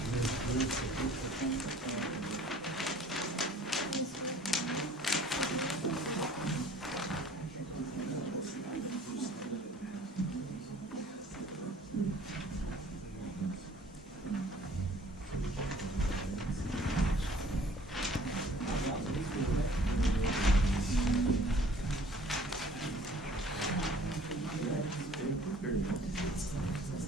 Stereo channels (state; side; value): normal; both; correlation 0.52